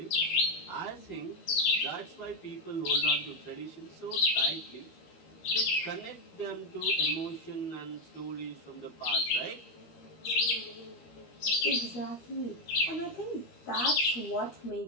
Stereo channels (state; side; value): late; right; 12 ms